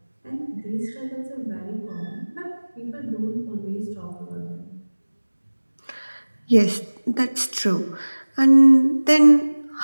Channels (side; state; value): both; inverted; correlation -1.00